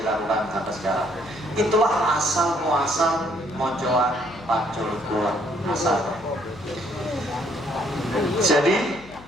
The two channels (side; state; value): left; noise; hum, 20 dB below the sound